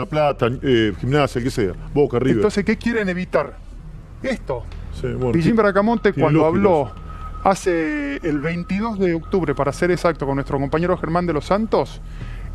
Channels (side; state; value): both; identical; correlation 1.00